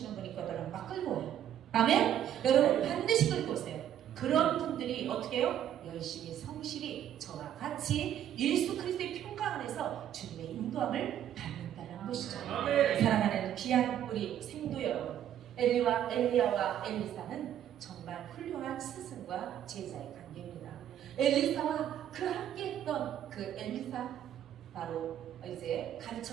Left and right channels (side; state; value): left; quieter; 10.6 dB